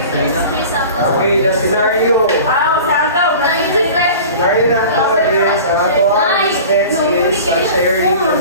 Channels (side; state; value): both; inverted; correlation -0.39